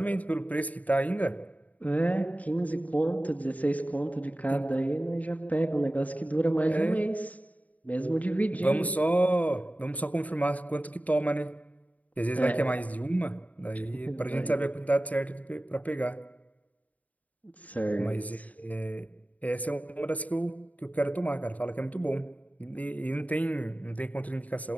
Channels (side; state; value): right; late; 0.072 ms